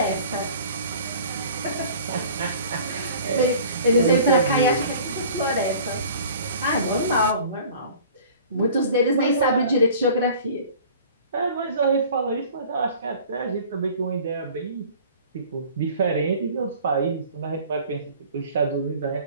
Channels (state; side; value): inverted; both; correlation -0.47